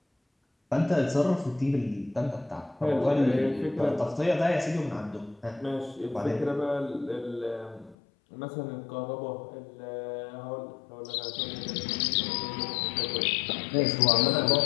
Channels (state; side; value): drops out; right; at 8.0 s